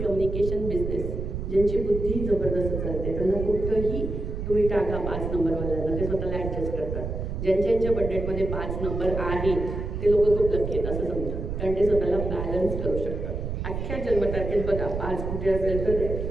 बिझनेस, ज्यांची बुद्धी जबरदस्त चालते त्यांना कुठंही तुम्ही टाका 5 नंबरवाल्यांना, ते स्वतःला ॲडजस्ट करतात. ज्यांच्या बड्डेटमध्ये 5 नंबर आहे ते लोक खूप लकी आहेत असं समजा, कारण ते स्वतःला बॅलन्स करू शकतात. अख्ख्या जन्मतारखेत बघा 5 कुठे असेल तर ते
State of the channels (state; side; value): noise; right; rumble, 4 dB below the sound